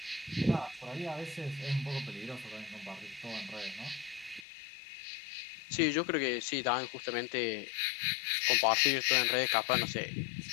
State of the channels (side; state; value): right; drops out; at 4.5 s